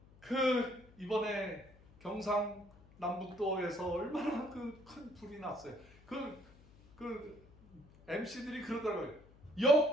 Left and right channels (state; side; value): noise; left; hum, 25 dB below the sound